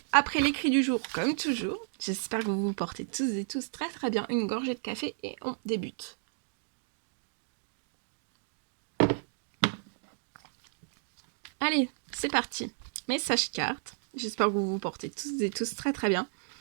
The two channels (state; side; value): silent; left; digital silence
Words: Après l'écrit du jour, comme toujours. J'espère que vous vous portez tous et tous très très bien. Une gorgée de café et on débute. Allez, c'est parti. Message carte. J'espère que vous vous portez tous et tous très très bien.